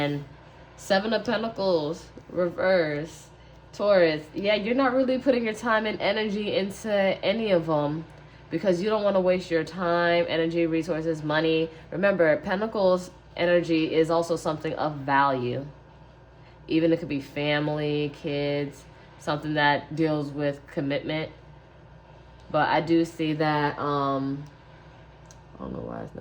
Seven of Pentacles, reverse, Taurus, yeah, you're not really putting your time and energy into any of them because you don't want to waste your time, energy, resources, money. Remember, Pentacles energy is also something of value. Even it could be family, kids, something that deals with commitment. But I do see that, I don't know why it's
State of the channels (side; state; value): both; identical; correlation 1.00